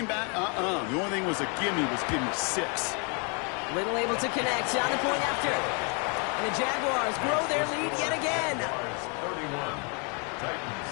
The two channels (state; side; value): quieter; right; 35.9 dB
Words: back. The only thing was a gimme 6. Little able to connect on the point after. And the Jaguars grow their lead yet again.